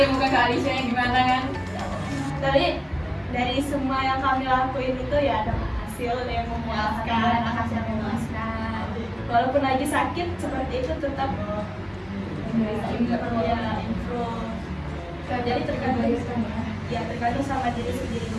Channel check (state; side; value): identical; both; correlation 1.00